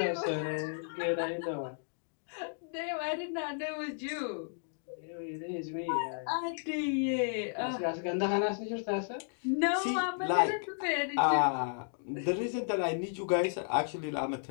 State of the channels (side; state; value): right; silent; digital silence